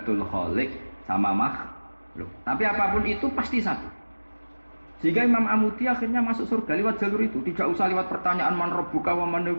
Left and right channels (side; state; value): both; inverted; correlation -1.00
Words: khaliq sama makhluk. Tapi apapun itu pasti satu. Sehingga Imam Amudi akhirnya masuk surga lewat jalur itu, tidak usah lewat pertanyaan man rabbuka wa man